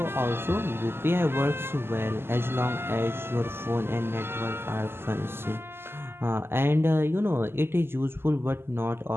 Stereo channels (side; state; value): left; late; 0.12 ms